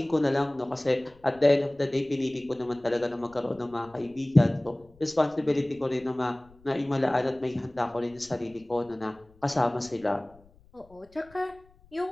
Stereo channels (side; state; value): left; noise; rumble, 28 dB below the sound